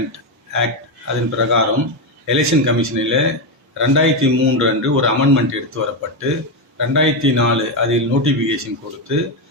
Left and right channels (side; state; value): both; normal; correlation 0.08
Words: ஆக்ட் அதன் பிரகாரம் எலெக்ஷன் கமிஷனில் 2003 அன்று ஒரு அமெண்ட்மெண்ட் எடுத்து வரப்பட்டு 2004 அதில் நோட்டிஃபிகேஷன் கொடுத்து,